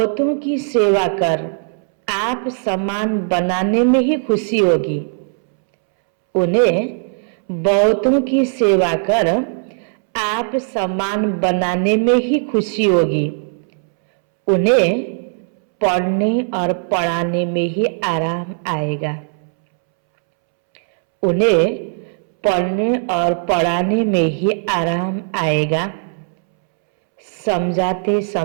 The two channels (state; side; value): silent; left; 67 dB below the other